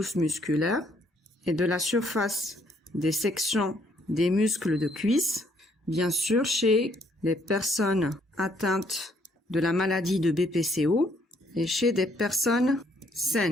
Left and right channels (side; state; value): both; normal; correlation 0.68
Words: musculaires et de la surface des sections des muscles de cuisse, bien sûr chez les personnes atteintes de la maladie de BPCO et chez des personnes